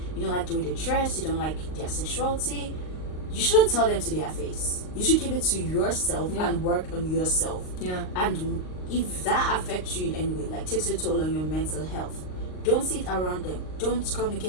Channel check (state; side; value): late; right; 38 ms